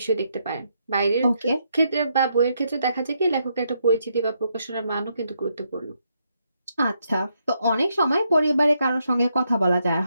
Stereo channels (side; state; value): both; inverted; correlation -0.78